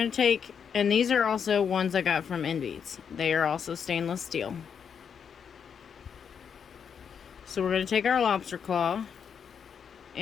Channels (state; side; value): quieter; right; 7.2 dB